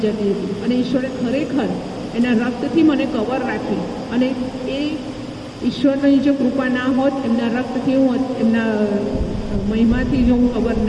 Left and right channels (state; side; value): identical; both; correlation 1.00